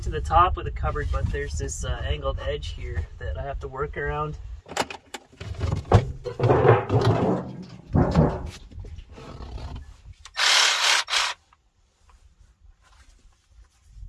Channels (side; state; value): both; identical; correlation 1.00